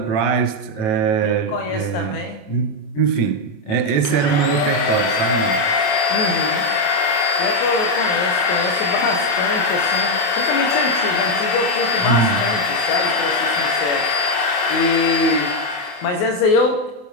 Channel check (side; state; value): right; late; 28 ms